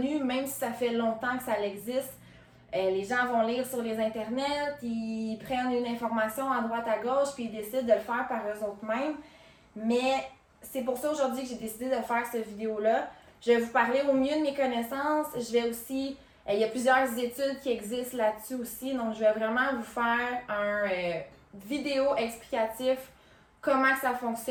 même si ça fait longtemps que ça existe. Les gens vont lire sur les internets, ils prennent une information à droite à gauche, puis ils décident de le faire par eux-mêmes. Mais c'est pour ça aujourd'hui que j'ai décidé de faire cette vidéo-là. Je vais vous parler au mieux de mes connaissances. Je vais aussi... il y a plusieurs études qui existent là-dessus aussi. Donc, je vais vraiment vous faire un vidéo explicatif comment que ça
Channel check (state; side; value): identical; both; correlation 1.00